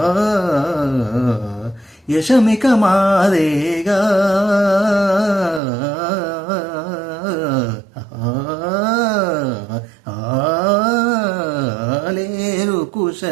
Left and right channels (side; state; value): left; drops out; at 5.6 s